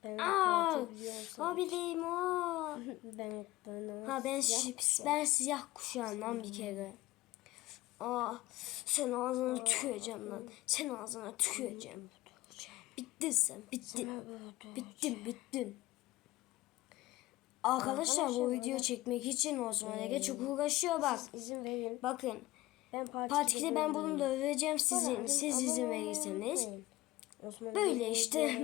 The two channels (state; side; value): quieter; right; 18.0 dB